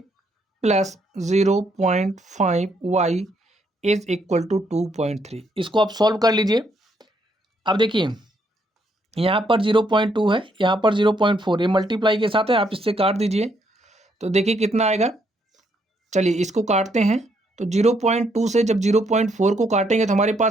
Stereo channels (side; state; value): both; normal; correlation 0.73